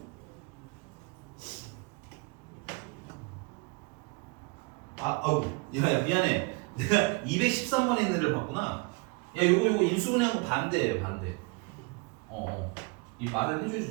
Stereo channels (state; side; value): quieter; left; 29.8 dB